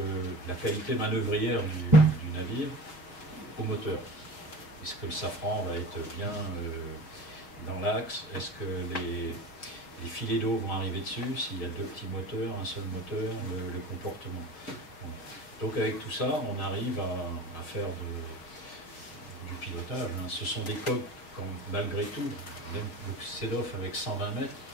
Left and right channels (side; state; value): right; late; 6.2 ms